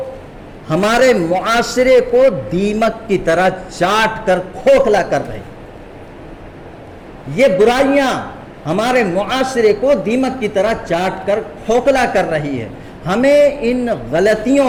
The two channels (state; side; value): identical; both; correlation 1.00